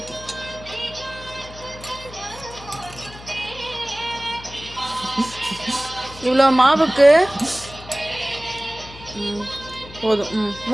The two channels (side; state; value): left; noise; hum, 17 dB below the sound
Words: இவ்வளோ மாவுக்கு போதும்.